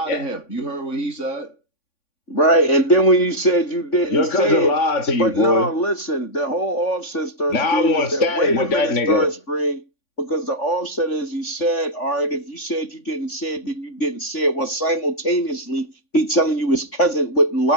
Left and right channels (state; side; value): late; right; 3.5 ms